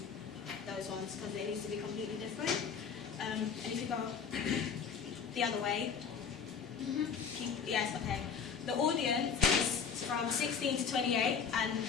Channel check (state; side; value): quieter; right; 6.5 dB